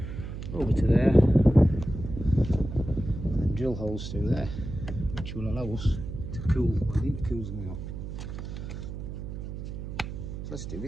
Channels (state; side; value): noise; right; hum, 8 dB below the sound